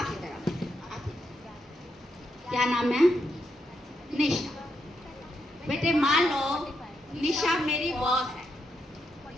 क्या नाम है? निशा। बेटे मान लो निशा मेरी बॉस है।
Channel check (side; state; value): both; normal; correlation 0.82